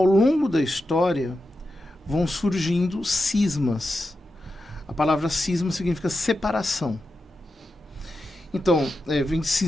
longo da história vão surgindo cismas. A palavra cisma significa separação. Então, vem de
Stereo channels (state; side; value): normal; both; correlation 0.90